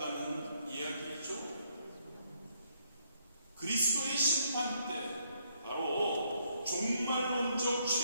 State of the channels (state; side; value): inverted; both; correlation -0.72